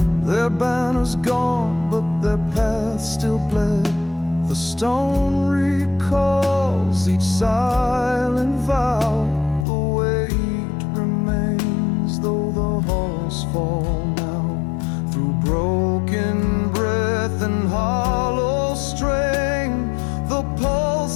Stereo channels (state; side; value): drops out; right; at 9.7 s